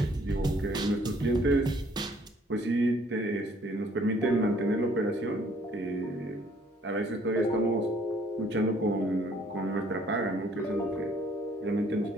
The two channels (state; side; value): normal; both; correlation 0.61